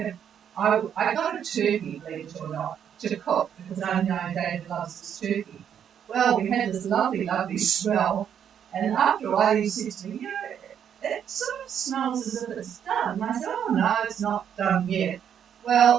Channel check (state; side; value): quieter; left; 8.7 dB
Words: a turkey, believe it or not, to cook, because I know David loves this turkey. Well, we had this lovely, lovely smell, and after a while he said to me, you know, it sort of smells as if it's done. And I said, oh no, it's not done yet.